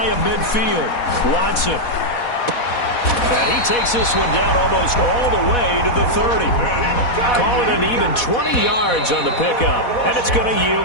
of midfield, Watson. And he takes this one down almost all the way to the 30. Call it an even 20 yards on the pickup, and it's going to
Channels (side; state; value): right; late; 4.1 ms